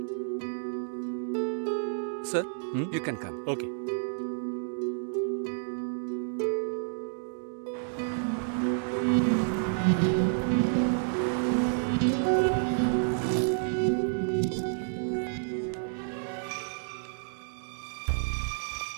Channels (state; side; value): silent; left; digital silence